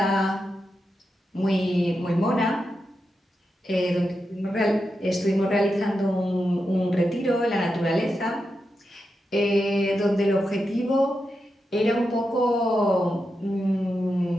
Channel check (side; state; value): both; normal; correlation 0.88